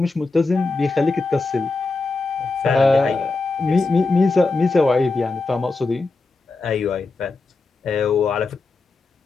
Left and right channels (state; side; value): quieter; right; 3.6 dB